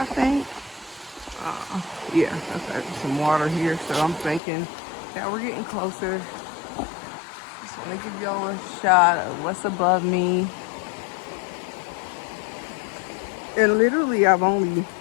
think. Yeah, okay, some water here, so I'm thinking that we're getting closer. Just want to give y'all a shot of what's above me. And literally, I've only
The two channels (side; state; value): right; drops out; at 4.4 s